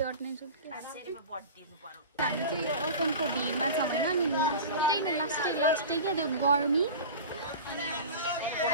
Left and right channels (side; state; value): both; inverted; correlation -0.33